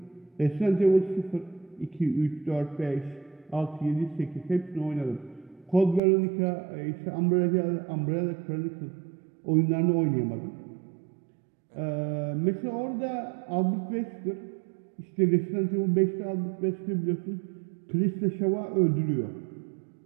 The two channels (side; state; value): left; drops out; at 6.0 s